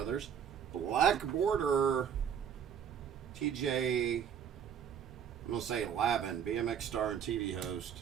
Black border... TJ, I'm going to say Lavin, BMX star and TV host.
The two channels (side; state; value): left; quieter; 8.2 dB